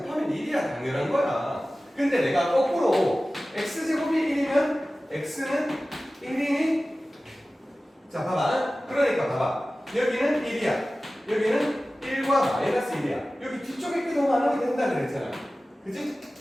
1이야. 당연한 거야. 근데 내가 거꾸로 x제곱이 1이면 x는 1이니 자 봐봐. 그러니까 봐봐. 여기는 1이야. 여기는 1과 마이너스 1이야. 여기 뒤쪽에 게 더 많으면 된다 그랬잖아. 그치?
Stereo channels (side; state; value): both; normal; correlation 0.96